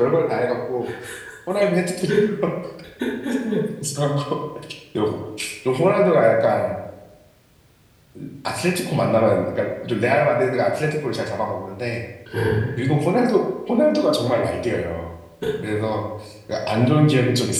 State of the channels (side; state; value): both; identical; correlation 1.00